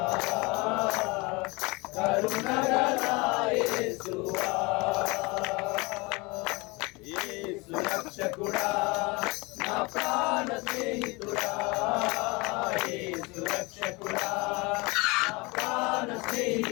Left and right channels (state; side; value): quieter; right; 26.1 dB